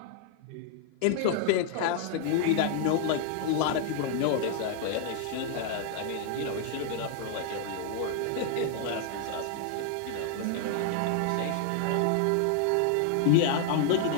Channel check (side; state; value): both; different; correlation 0.00